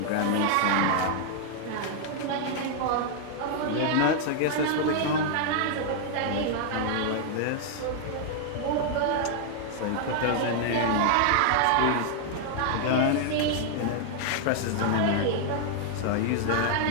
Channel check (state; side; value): different; both; correlation 0.00